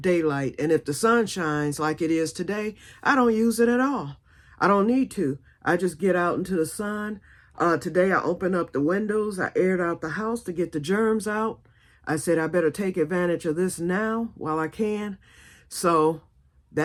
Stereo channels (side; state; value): both; identical; correlation 1.00